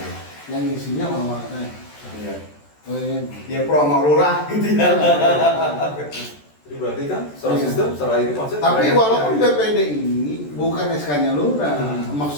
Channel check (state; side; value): late; right; 14 ms